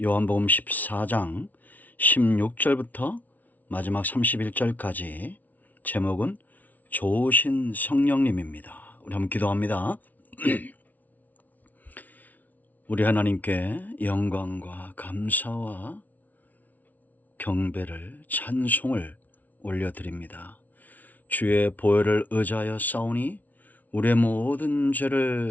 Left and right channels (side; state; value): right; late; 0.077 ms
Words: 요한복음 14장 16절부터 마지막 31절까지. 제목은 좋으신 성령님입니다. 우리 한번 기도합니다. 우리 하나님께 영광과 감사와 경배를, 찬송을 올려드립니다. 주의 보혈을 의지하여 싸우니 우리의 모든